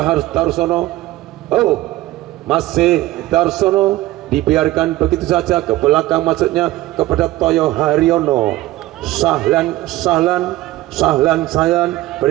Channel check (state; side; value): quieter; left; 17.0 dB